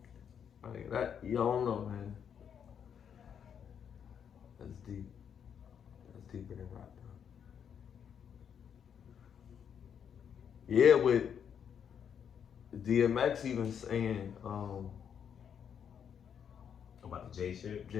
I mean, that, you don't know, man. That's deep. That's deeper than rock, bro. Yeah, with DMX even saying, About the J shit?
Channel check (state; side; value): quieter; right; 8.0 dB